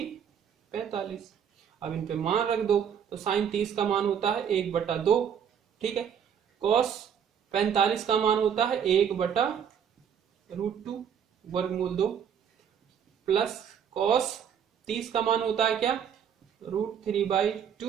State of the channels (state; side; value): quieter; left; 8.1 dB